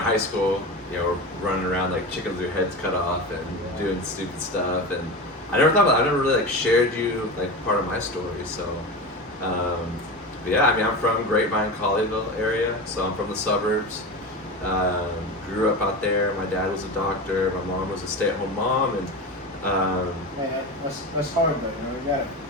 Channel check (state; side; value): normal; both; correlation 0.26